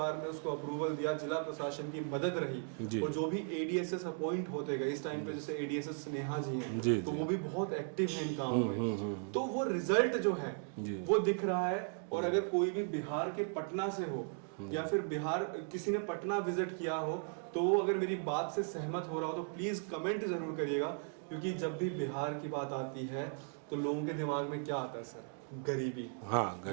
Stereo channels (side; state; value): left; silent; 53 dB below the other